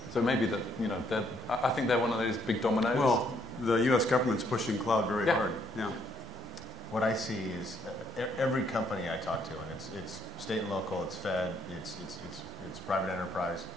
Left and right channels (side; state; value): both; normal; correlation 0.70